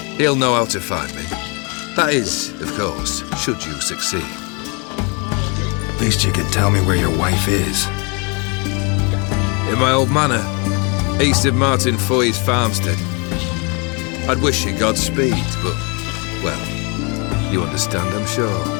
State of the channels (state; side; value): quieter; right; 32.5 dB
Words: He'll know how to find me. That is, of course, should you succeed. At least you could tell me where your wife is. In my old manor, east of Martin Foy's farmstead. I'd wish you Godspeed, but, well, you understand, I'm sure.